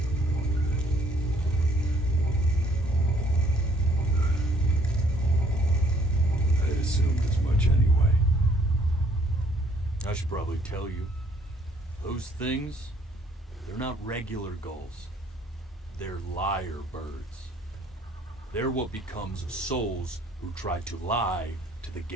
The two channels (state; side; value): normal; both; correlation 0.62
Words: I had assumed as much anyway. I should probably tell you, those things, they're not regular gulls. They're lyre birds. They're what becomes of souls who try to lie to the